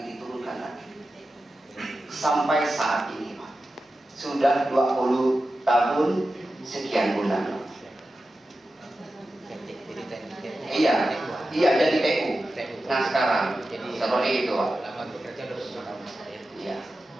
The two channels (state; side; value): normal; both; correlation 0.92